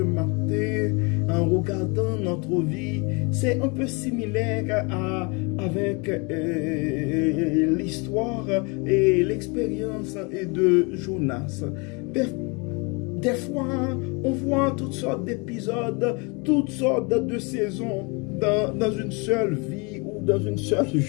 en regardant notre vie, c'est un peu similaire avec l'histoire et l'expérience de Jonas. Des fois, on voit toutes sortes d'épisodes, toutes sortes de saisons dans une seule vie ou dans une seule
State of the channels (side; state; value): right; quieter; 30.5 dB